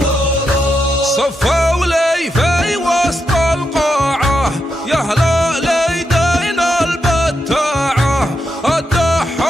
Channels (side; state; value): both; normal; correlation 0.84